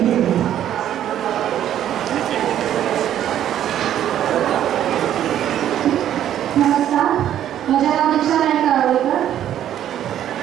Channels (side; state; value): left; quieter; 11.0 dB